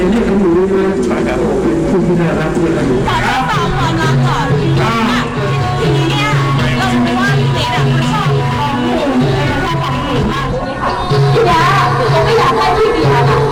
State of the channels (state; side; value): identical; both; correlation 1.00